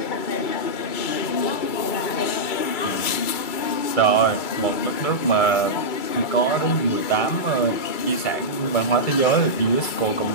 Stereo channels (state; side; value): late; right; 2.3 ms